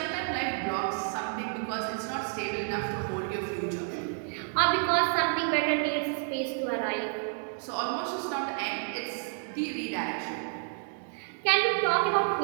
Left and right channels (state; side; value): silent; left; 58 dB below the other